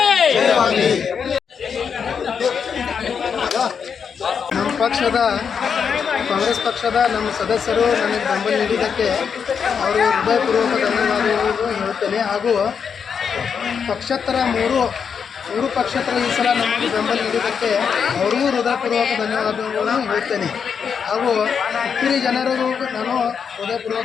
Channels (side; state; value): right; quieter; 6.7 dB